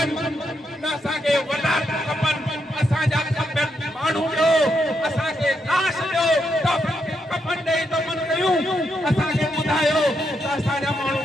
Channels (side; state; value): both; normal; correlation 0.80